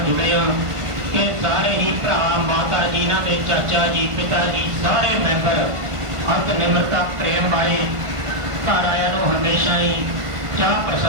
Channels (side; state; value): left; late; 1.5 ms